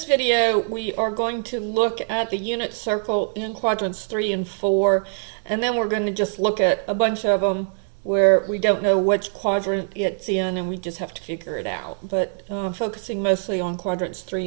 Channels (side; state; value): left; silent; digital silence